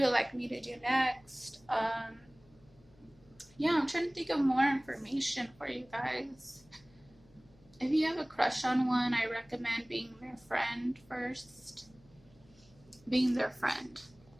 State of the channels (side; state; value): left; noise; hum, 28 dB below the sound